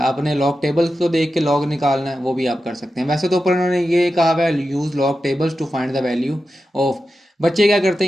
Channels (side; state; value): both; normal; correlation 0.91